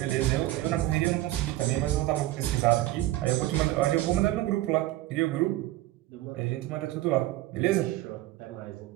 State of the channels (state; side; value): quieter; left; 16.2 dB